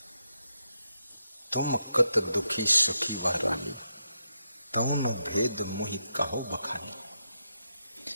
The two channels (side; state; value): both; inverted; correlation -0.83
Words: तुम कत दुखी सुखी वह रानी, तऊ न भेद मोहि कहो बखानी।